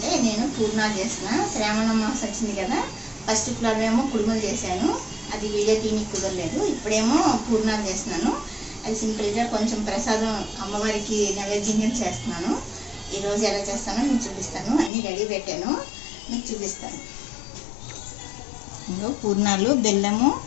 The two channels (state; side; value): drops out; right; at 14.9 s